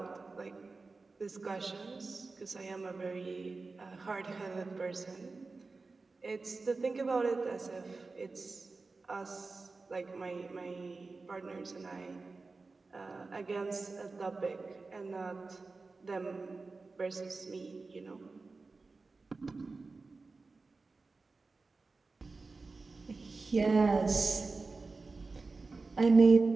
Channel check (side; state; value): left; quieter; 3.9 dB